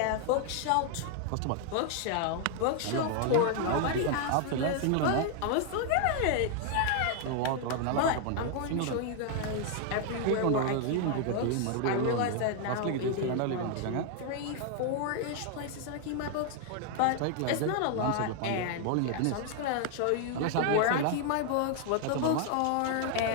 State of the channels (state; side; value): different; both; correlation 0.00